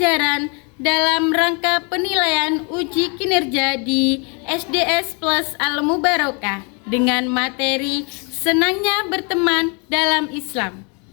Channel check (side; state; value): right; quieter; 34.2 dB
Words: dalam rangka penilaian uji kinerja di SDS Plus Al Mubarakah dengan materi Senangnya Berteman dalam Islam.